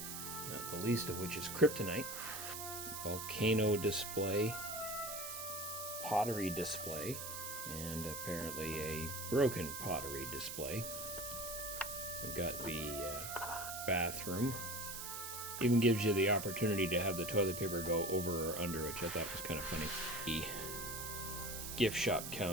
not the least of which is kryptonite, volcano display, pottery display, and apparently a broken pottery display. We've got the bathroom. Even gives you the opportunity to have the toilet paper go over or under, which I thought was kind of funny. The gift shop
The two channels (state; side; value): noise; right; hiss, 6 dB below the sound